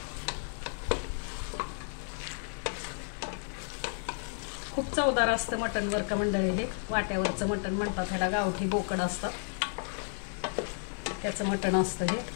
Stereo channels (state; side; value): silent; right; digital silence